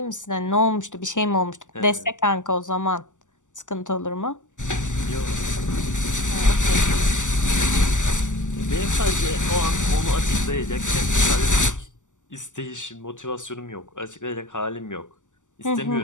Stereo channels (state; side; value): late; right; 0.86 ms